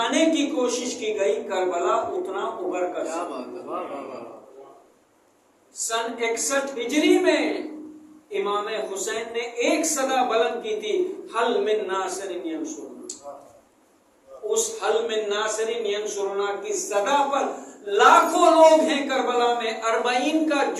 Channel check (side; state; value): both; identical; correlation 1.00